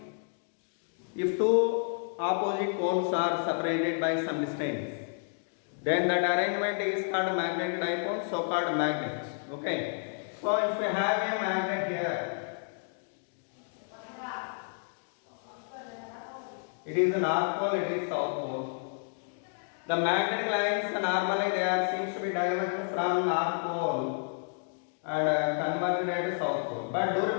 if two opposite poles are separated by some distance, then that arrangement is called magnetic dipole, so called magnets. Okay. So if you have a magnet here, it is north pole, it is south pole. The magnetic lines normally they are seems to be diverged from north pole and converged at south pole. But do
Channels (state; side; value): silent; right; digital silence